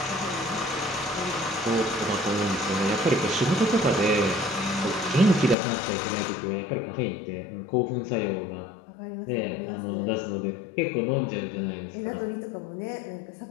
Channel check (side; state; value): right; drops out; at 5.6 s